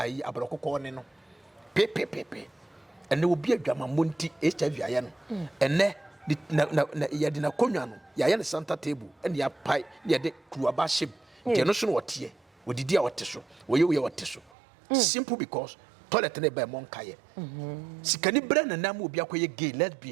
aborɔkokɔ ne no pepepepe ɛne obi adwamammɔ nti HIV ayɛ no ɛnɛ na yɛde na konwa no yɛayɛ ne center table ɛne yɛapae ne yɛde kuruaba hyɛm nti ɛno so no wɔteɛ wɔdidi a wɔte so wɔyɛ wɔte so simple because toilet ne ba mo nkaye sikani bra na nam obi akoye gay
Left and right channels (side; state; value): left; drops out; at 14.5 s